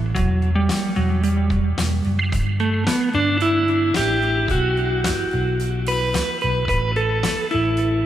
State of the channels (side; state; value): both; normal; correlation 0.87